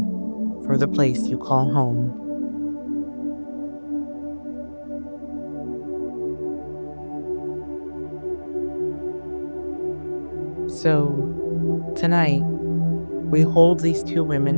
for the place you call home. So, tonight, we hold these two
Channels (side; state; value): both; inverted; correlation -1.00